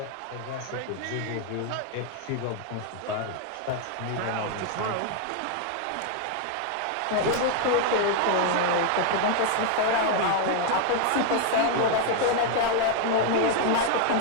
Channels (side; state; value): both; different; correlation 0.00